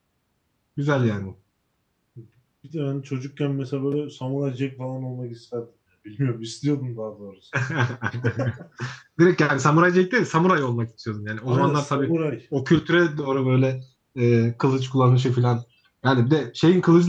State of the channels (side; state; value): both; identical; correlation 1.00